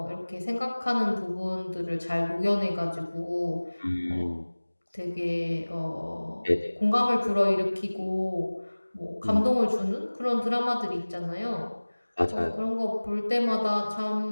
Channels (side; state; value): both; inverted; correlation -1.00